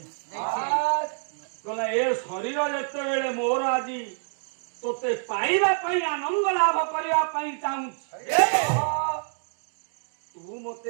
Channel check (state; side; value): silent; left; digital silence